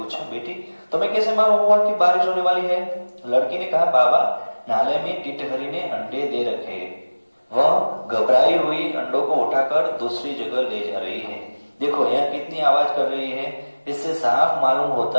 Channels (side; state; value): both; inverted; correlation -1.00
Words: बेटी तुम्हें कैसे मालूम हुआ कि बारिश होने वाली है? लड़की ने कहा, बाबा नाले में टिटहरी ने अंडे दे रखे, वह घबराई हुई अंडों को उठाकर दूसरी जगह ले जा रही है। देखो यह कितनी आवाज कर रही है, इससे साफ मालूम